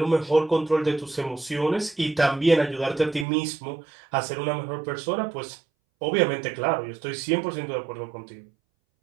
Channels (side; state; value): left; drops out; at 3.2 s